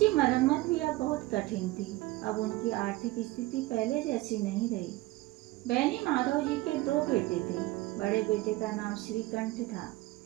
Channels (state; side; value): quieter; left; 19.1 dB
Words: मरम्मत भी अब बहुत कठिन थी। अब उनकी आर्थिक स्थिति पहले जैसी नहीं रही। बेनी माधव जी के दो बेटे थे। बड़े बेटे का नाम श्रीकंठ था।